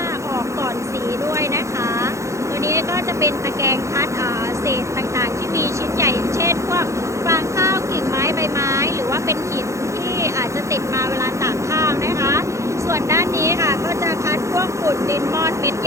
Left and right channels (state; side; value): late; left; 0.14 ms